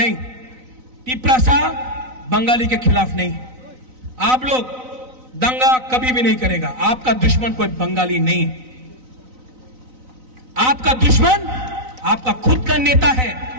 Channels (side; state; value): left; late; 4.0 ms